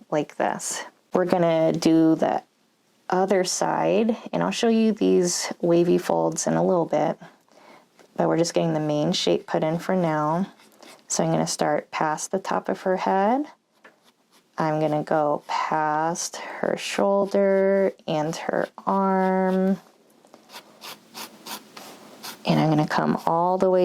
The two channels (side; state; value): both; identical; correlation 1.00